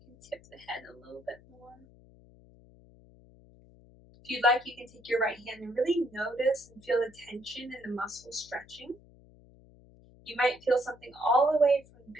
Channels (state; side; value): noise; left; hum, 25 dB below the sound